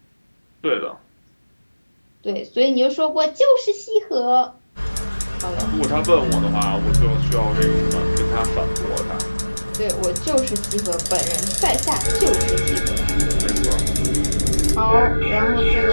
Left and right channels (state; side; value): inverted; both; correlation -1.00